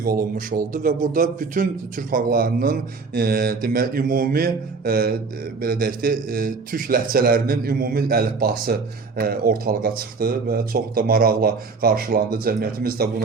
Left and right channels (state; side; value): quieter; left; 4.5 dB